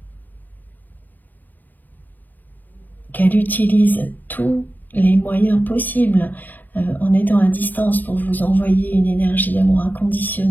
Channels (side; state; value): right; late; 0.087 ms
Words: qu'elle utilise tous les moyens possibles en étant à distance pour vous envoyer une énergie d'amour